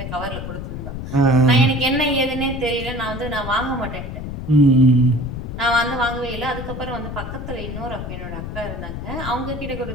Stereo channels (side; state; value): left; noise; rumble, 7 dB below the sound